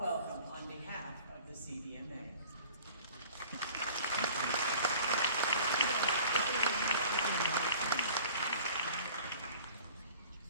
on behalf of the CVMA.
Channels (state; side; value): inverted; both; correlation -0.46